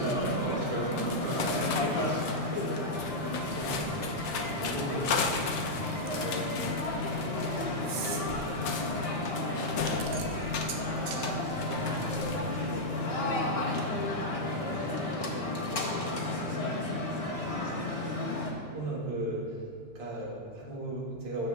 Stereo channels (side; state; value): both; normal; correlation -0.04